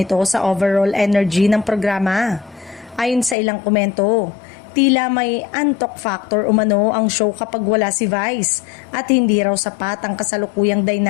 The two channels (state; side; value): drops out; right; at 3.4 s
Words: sa overall energy ng programa. Ayon sa ilang komento, tila may antok factor umano ang show kapag wala si Vice at hindi raw sapat ang kasalukuyang